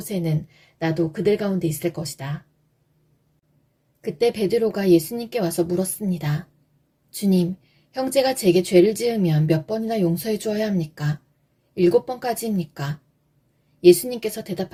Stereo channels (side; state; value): both; identical; correlation 1.00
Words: 나도 그들 가운데 있을 것이다. 그때 베드로가 예수님께 와서 물었습니다. 주님, 형제가 제게 죄를 지으면 몇 번이나 용서해 주어야 합니까? 7번까지입니까? 예수님께서